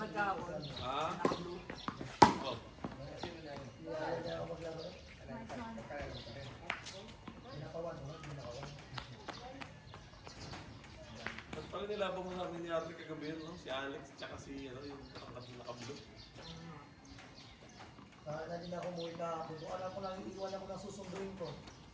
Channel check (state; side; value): identical; both; correlation 1.00